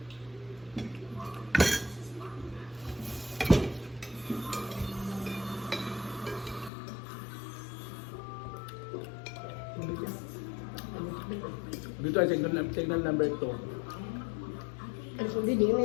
Dito ay signal number 2. Ang sundi din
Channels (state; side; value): drops out; right; at 6.7 s